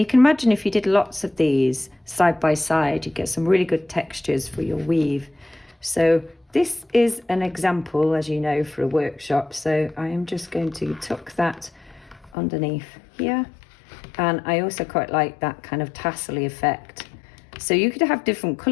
can imagine if you did lots of these side by side, you get some really good textures for your weave. So this is an example, as you know, for a workshop, so I am just going to tuck that underneath here. And I also quite like that kind of tassel-y effect. So you could have different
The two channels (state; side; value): drops out; right; at 12.3 s